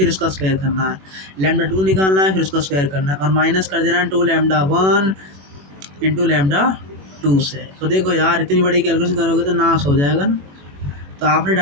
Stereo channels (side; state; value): left; late; 21 ms